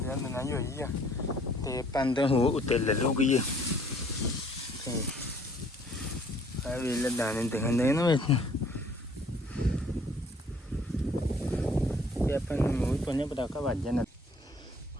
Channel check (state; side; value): normal; both; correlation 0.59